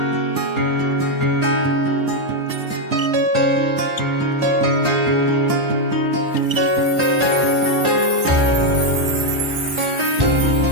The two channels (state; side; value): late; left; 1.4 ms